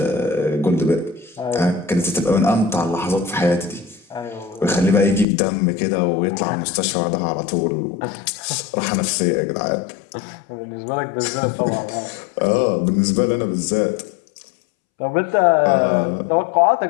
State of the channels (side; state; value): right; drops out; at 5.2 s